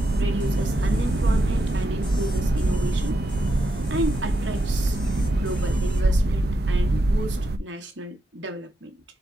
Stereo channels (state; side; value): normal; both; correlation 0.84